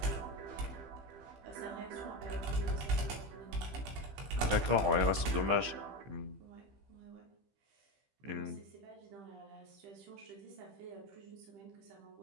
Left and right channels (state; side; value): late; left; 15 ms